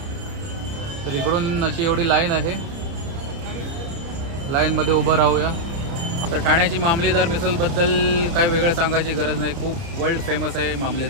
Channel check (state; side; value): late; left; 30 ms